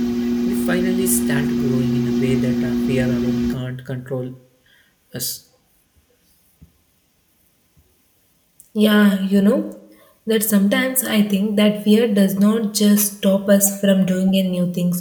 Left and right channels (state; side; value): identical; both; correlation 1.00